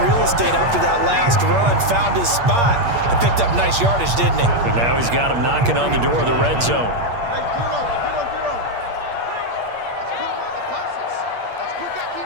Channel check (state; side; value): late; left; 8.5 ms